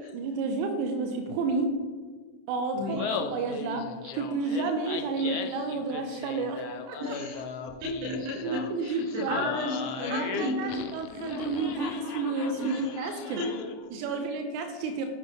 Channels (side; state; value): left; late; 32 ms